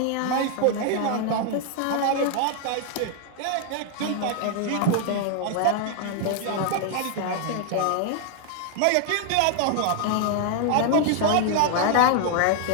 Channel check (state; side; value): different; both; correlation 0.00